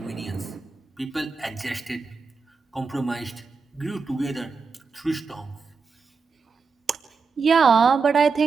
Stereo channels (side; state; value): left; quieter; 4.9 dB